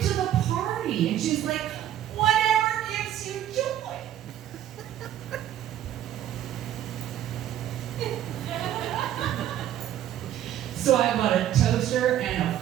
to the party?" And she's like, "Whatever gives you joy." So I bought a toaster and a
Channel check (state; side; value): quieter; left; 11.5 dB